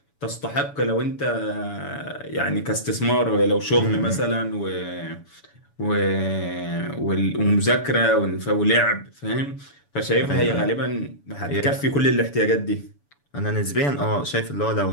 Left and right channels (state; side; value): late; right; 7.0 ms